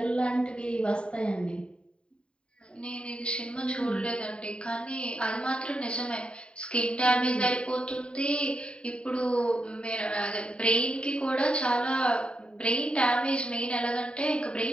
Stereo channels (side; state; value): right; late; 0.053 ms